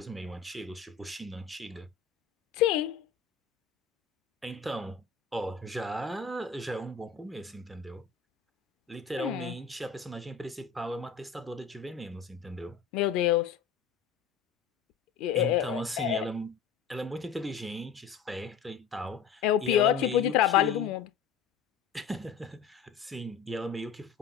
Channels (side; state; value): right; quieter; 6.9 dB